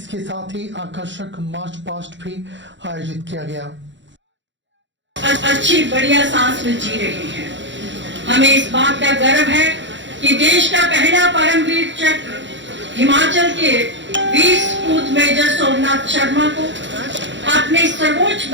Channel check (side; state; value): left; late; 0.54 ms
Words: साथ ही आकर्षक मार्च पास्ट भी आयोजित किया गया। अच्छी बढ़िया सांस में जी रहे हैं। हमें इस बात का गर्व है कि देश का पहला परमवीर चक्र हिमाचल के वीर सपूत मेजर सोमनाथ शर्मा को अपने सर्वोच्च